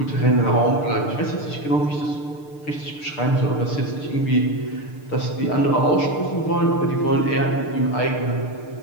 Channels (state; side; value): late; right; 6.7 ms